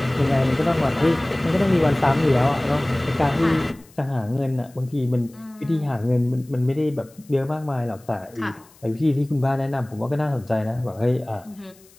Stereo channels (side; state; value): left; noise; hiss, 28 dB below the sound